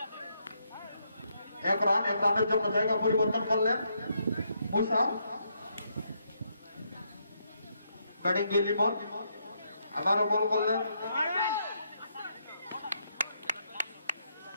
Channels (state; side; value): inverted; both; correlation -0.77